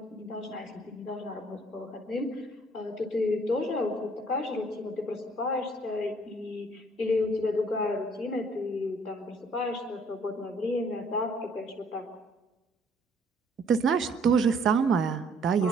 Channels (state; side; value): normal; both; correlation 0.61